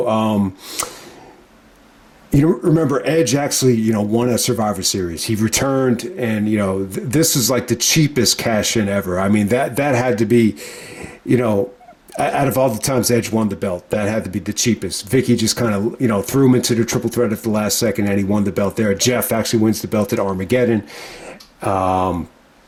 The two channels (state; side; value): identical; both; correlation 1.00